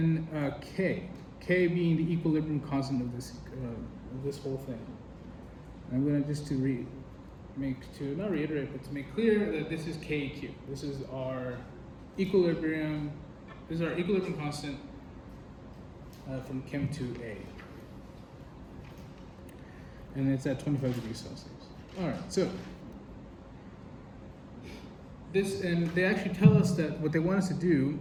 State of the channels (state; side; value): identical; both; correlation 1.00